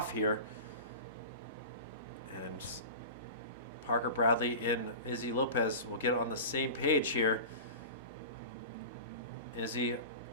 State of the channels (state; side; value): inverted; both; correlation -0.32